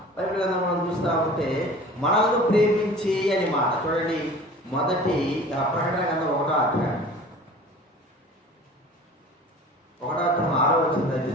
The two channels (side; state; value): both; normal; correlation 0.42